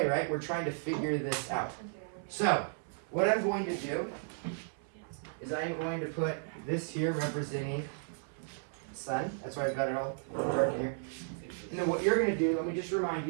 right? We're trying to figure this out. So, what I'm going to do is I am going to put this here representing the sun. That's why I've got it all dark here. And then what you're going to do, let me just remind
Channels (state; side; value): silent; left; 55 dB below the other